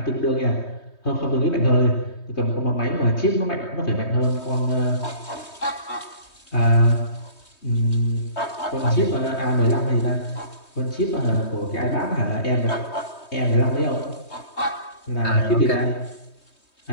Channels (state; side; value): late; right; 3.2 ms